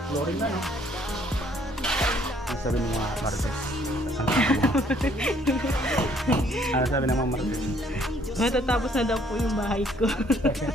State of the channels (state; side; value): normal; both; correlation 0.63